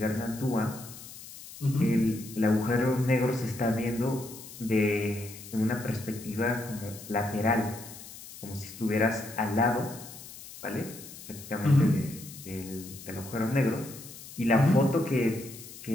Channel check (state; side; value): noise; left; hiss, 15 dB below the sound